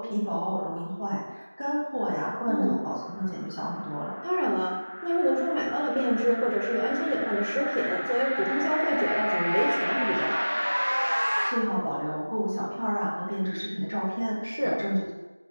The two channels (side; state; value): both; inverted; correlation -1.00